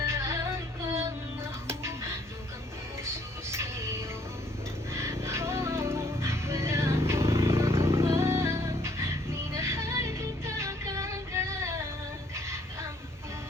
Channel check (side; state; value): both; normal; correlation 0.64